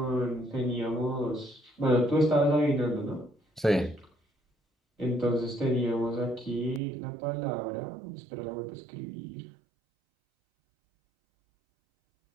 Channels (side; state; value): left; drops out; at 6.8 s